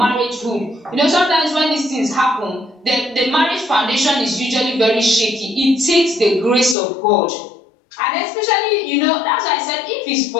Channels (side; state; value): right; drops out; at 6.8 s